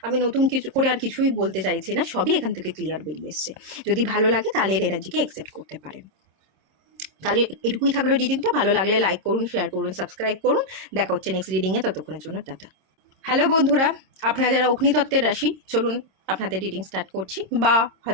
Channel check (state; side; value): late; left; 26 ms